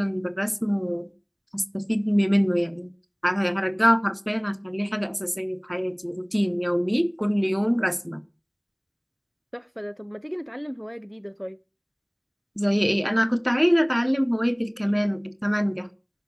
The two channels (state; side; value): identical; both; correlation 1.00